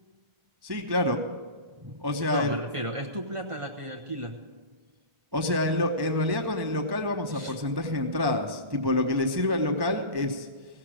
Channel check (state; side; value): late; left; 1.1 ms